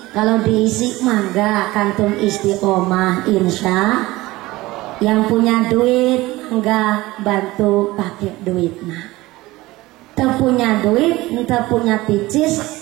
Kalau diisi mangga kantung istiqomah insya. Yang punya duit enggak bantu pakai duit nah. Teu punya duit, teu punya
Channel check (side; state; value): left; quieter; 19.3 dB